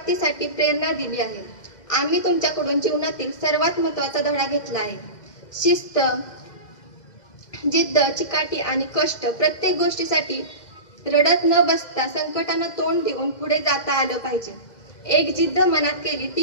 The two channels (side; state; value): right; late; 2.1 ms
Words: प्रेरणा दिली आहे. आम्ही तुमच्याकडून जीवनातील सर्वात महत्त्वाचा धडा घेतला आहे. शिस्त, जिद्द, चिकाटी आणि कष्ट. प्रत्येक गोष्टीसाठी रडत न बसता संकटांना तोंड देऊन पुढे जाता आलं पाहिजे. एक जिद्द मनात केली